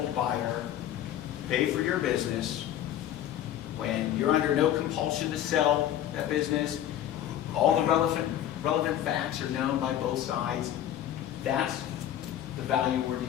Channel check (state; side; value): quieter; right; 11.5 dB